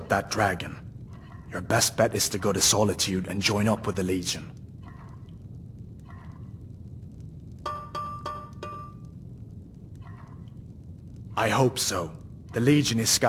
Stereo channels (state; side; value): identical; both; correlation 1.00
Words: that dragon, your best bet is to go to Solitude and join up with the Legion. I hope so. The Legion is